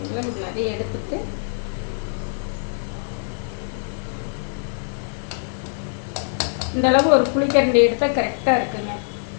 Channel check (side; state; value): right; silent; 63 dB below the other